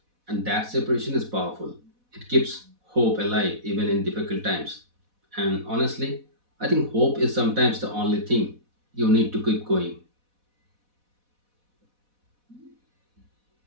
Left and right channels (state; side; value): late; left; 4.1 ms